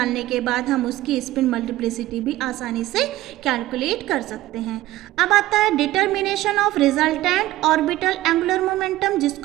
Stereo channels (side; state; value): left; quieter; 15.9 dB